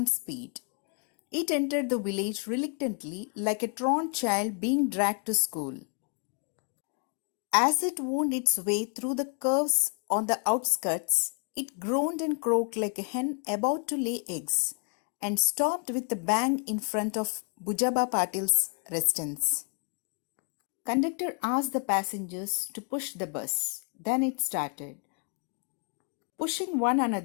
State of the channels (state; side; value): quieter; right; 37.5 dB